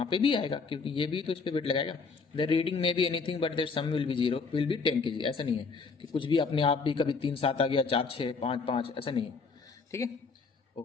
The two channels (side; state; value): right; quieter; 4.7 dB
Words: पे भी आएगा क्योंकि ये भी तो इस पर वेट लगाएगा। The reading may be anything but their sum will be 0 will be 10 kg, ऐसा नहीं है कि कुछ भी अपने आप भी कभी 3 7 आ गया, 4 6 5 5, ऐसा नहीं है, ठीक है।